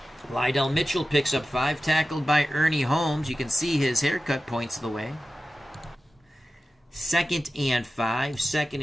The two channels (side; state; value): both; normal; correlation 0.94